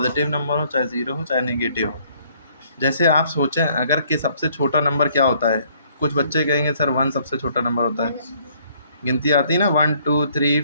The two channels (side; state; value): both; inverted; correlation -0.63